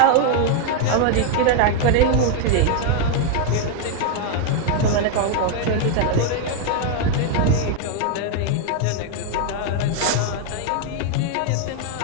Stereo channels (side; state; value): both; different; correlation 0.01